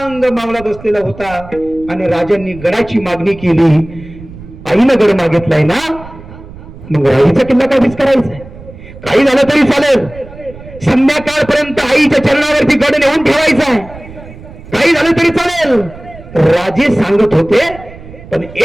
मावळा बसलेला होता आणि राजांनी गडाची मागणी केली. आईनं गड मागितलाय ना, मग राईचा किल्ला काय करायचा? काही झालं तरी चालेल, संध्याकाळपर्यंत आईच्या चरणावरती गड नेऊन ठेवायचा आहे, काही झालं तरी चालेल. राजे सांगत होते, पण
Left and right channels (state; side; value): noise; right; rumble, 17 dB below the sound